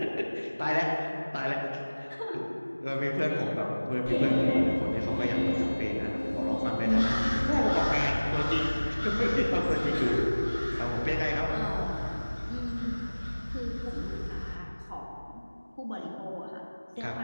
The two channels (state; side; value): inverted; both; correlation -1.00